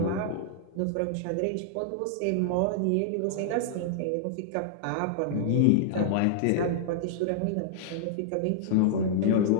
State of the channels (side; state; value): both; different; correlation -0.01